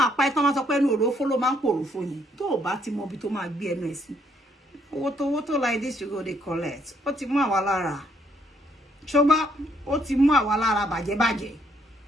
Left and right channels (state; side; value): normal; both; correlation 0.70